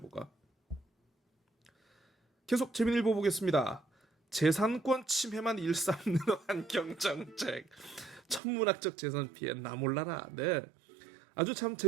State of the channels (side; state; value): left; drops out; at 8.4 s